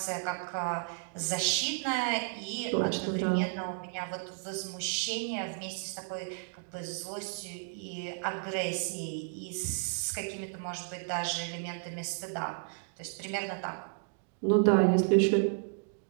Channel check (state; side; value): silent; left; 56 dB below the other